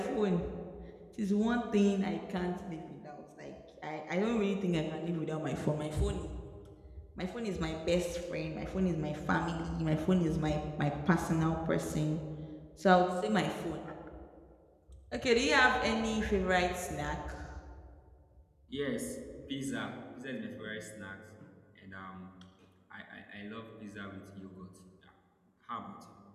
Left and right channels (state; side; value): identical; both; correlation 1.00